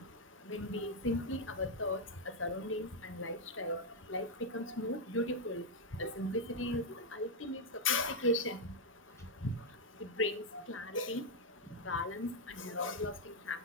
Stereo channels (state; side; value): normal; both; correlation 0.00